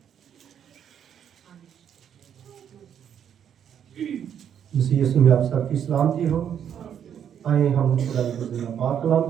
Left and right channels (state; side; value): quieter; left; 8.9 dB